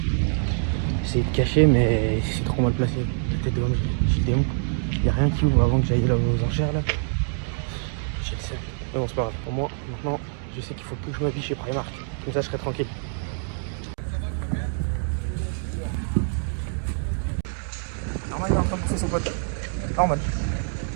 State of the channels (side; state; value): left; silent; digital silence